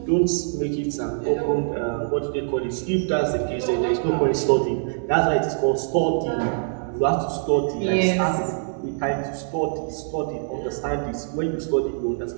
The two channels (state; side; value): silent; left; digital silence